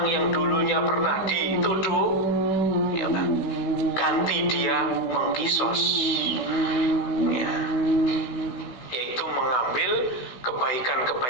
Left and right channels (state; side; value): late; right; 16 ms